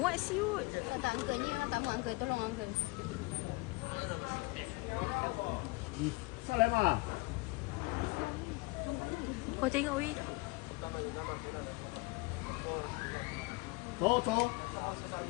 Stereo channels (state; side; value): quieter; right; 25.2 dB